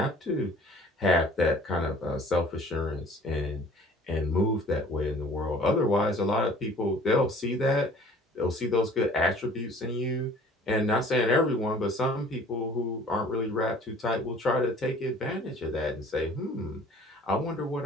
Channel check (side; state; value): both; normal; correlation 0.50